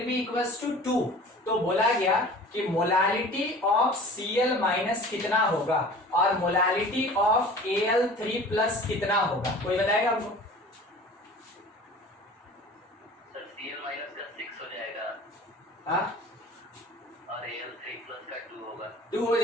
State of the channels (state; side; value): normal; both; correlation 0.43